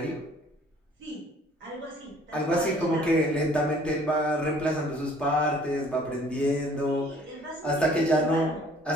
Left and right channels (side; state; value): both; normal; correlation 0.56